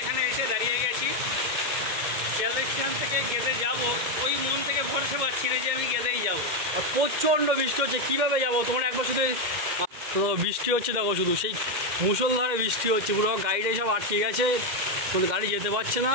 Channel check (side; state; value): left; late; 2.1 ms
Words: এসে দাঁড়িয়ে গেছি। শিয়ালদা স্টেশন থেকে গেদে যাব, ওই মন থেকে ভরসা পাচ্ছি না যে আমি গেদেই যাব। আর প্রচণ্ড বৃষ্টি হচ্ছে, কীভাবে যাবো? তোমরা একবার শুধু বৃষ্টি হচ্ছে দেখো, শুধু সেই মুষলধারে বৃষ্টি হচ্ছে, পুরো গাড়িটাই সব আটকে গেছে, কোনো গাড়ি যেতে পারছে না।